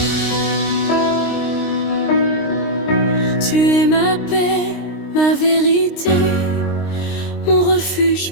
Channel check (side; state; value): right; late; 23 ms